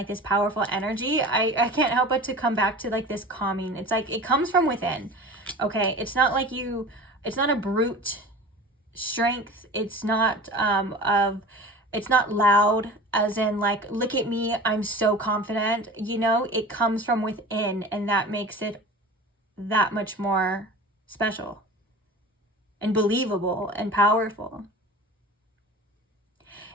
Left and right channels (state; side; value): normal; both; correlation 0.36